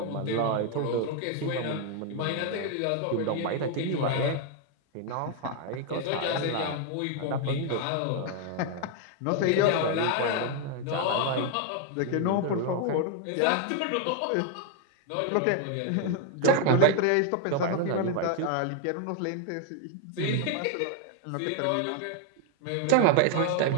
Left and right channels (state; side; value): different; both; correlation 0.01